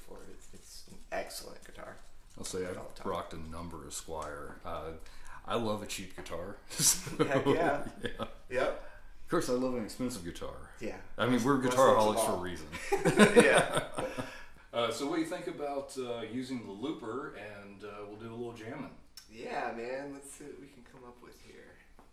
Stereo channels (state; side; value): identical; both; correlation 1.00